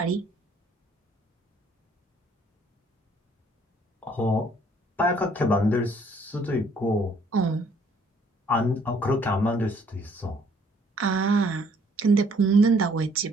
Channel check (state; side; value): normal; both; correlation 0.62